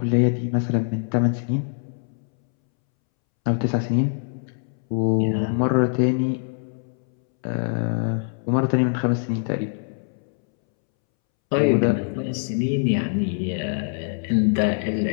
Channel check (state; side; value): silent; right; 63 dB below the other